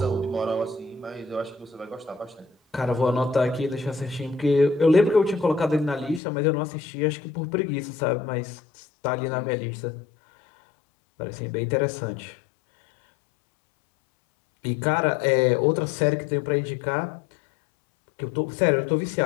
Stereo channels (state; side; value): drops out; right; at 6.2 s